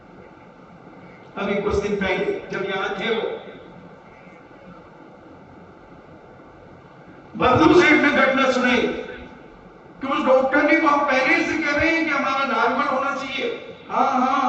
अभी कुछ दिन पहले, जब यहां थे वो बर्दू सेठ ने घटना सुनाई कि उस डॉक्टर ने को हम पहले से कह रहे हैं कि हमारा नॉर्मल होना चाहिए, हाँ हाँ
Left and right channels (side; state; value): both; identical; correlation 1.00